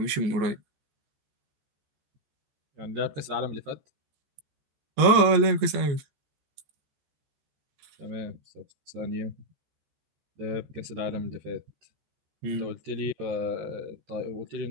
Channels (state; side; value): late; left; 14 ms